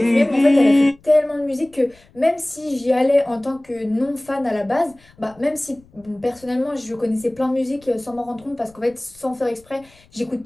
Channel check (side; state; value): left; noise; rumble, 29 dB below the sound